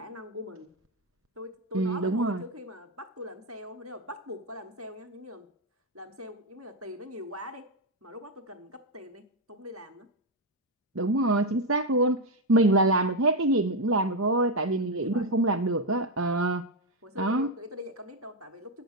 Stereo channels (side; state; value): both; normal; correlation 0.06